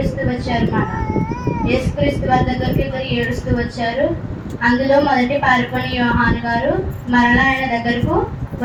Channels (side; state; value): both; identical; correlation 1.00